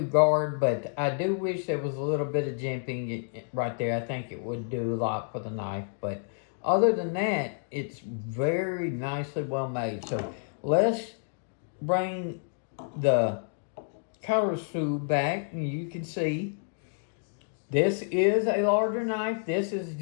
guard, but I do wish there was a little bit of jimping right there. I think it would do a lot for the knife, but other than that, it's very nicely well made. So let's bring the Karasu back, and you can see this is a larger knife. This is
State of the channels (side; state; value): right; silent; digital silence